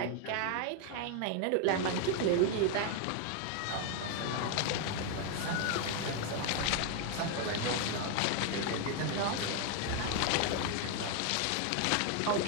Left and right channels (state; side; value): different; both; correlation 0.00